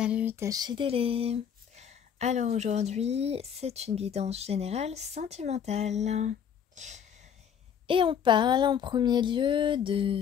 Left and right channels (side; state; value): right; quieter; 8.1 dB